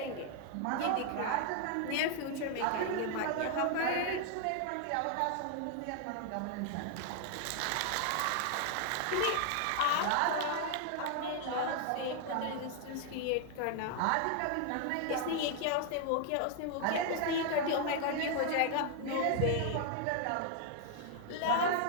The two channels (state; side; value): different; both; correlation 0.00